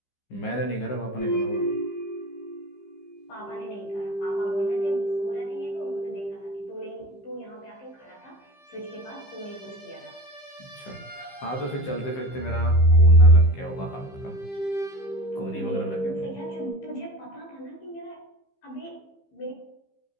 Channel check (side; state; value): right; late; 15 ms